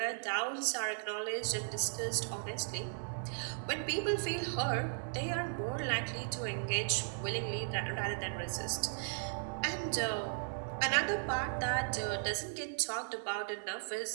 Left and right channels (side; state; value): left; silent; digital silence